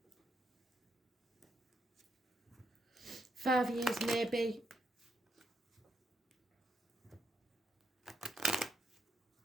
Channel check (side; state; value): both; normal; correlation 0.80